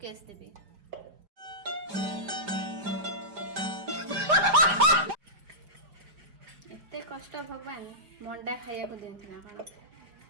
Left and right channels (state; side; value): late; left; 5.0 ms